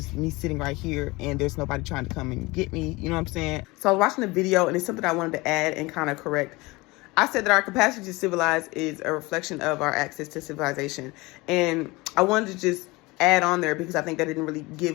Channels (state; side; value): quieter; right; 22.8 dB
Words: me sitting right here and there's nobody trying to come and get me, you know what I'm saying? So I was watching the video and it's something I wanted to add and kind of correct. I said that our capacity to civilize is a reflection of our access to civilization. And I wanted to just add on there because I think that didn't really